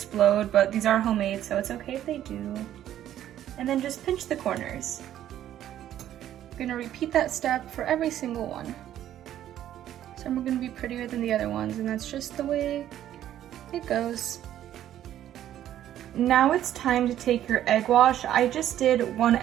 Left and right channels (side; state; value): left; quieter; 11.7 dB